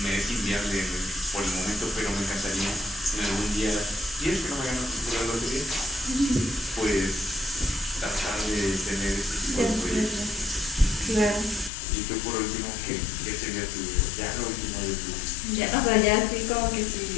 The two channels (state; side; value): drops out; right; at 11.7 s